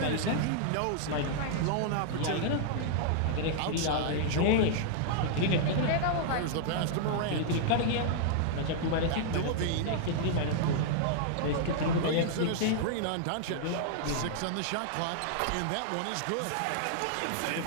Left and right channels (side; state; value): both; different; correlation -0.01